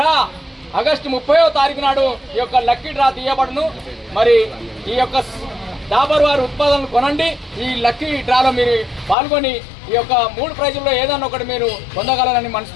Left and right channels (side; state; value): right; drops out; at 9.2 s